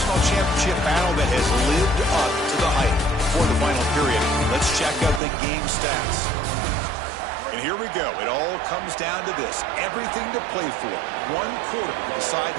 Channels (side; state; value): left; drops out; at 5.2 s